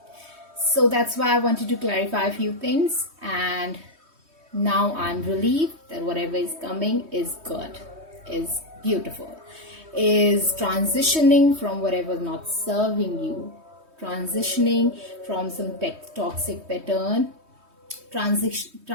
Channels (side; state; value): left; late; 3.2 ms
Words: So that's why I wanted to clarify a few things, and now I'm relieved that whatever is coming is good, is beautiful, is transitioning from whatever not serving you, transitioning from some toxic pattern,